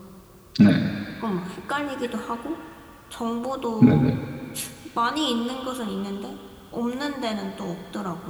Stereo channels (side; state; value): both; identical; correlation 1.00